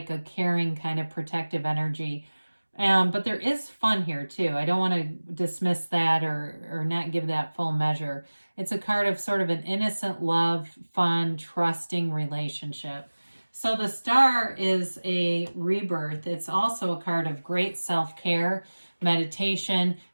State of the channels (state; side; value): inverted; both; correlation -1.00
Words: a caring kind of protective energy. But there is fun here too. I don't want to dismiss that or not give that full measure. It's a card of sort of an innocent love, fun, trusting relationship. So the star is a rebirth. It's also a card of great self-care, meditation,